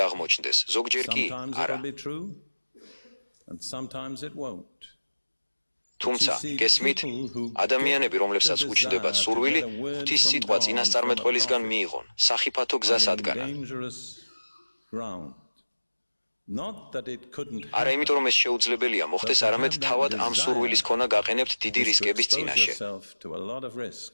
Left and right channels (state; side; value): inverted; both; correlation -1.00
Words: აღმოჩნდეს, ზოგჯერ კი არა. თუმცა, გესმით, ადამიანები, რომლებსაც უჩნდებათ სურვილი, ღვთის სიტყვა წინასწარმეტყველისგან მიიღონ, სახიფათო გზას ადგანან. არა იმიტომ, რომ ეს შეუძლებელია მოხდეს, არამედ თავად ამ სურვილის ქონა გაყენებთ დიდი რისკების წინაშე.